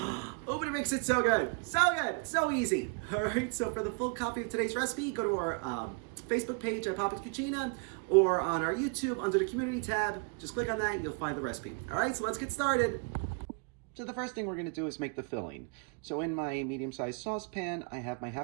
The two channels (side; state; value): left; quieter; 35.7 dB